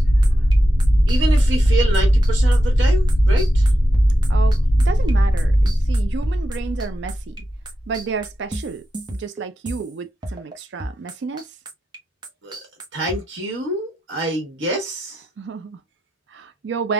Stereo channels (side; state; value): both; normal; correlation 0.89